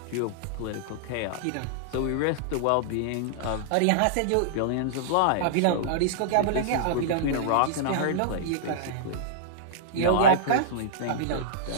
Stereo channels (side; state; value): both; different; correlation -0.02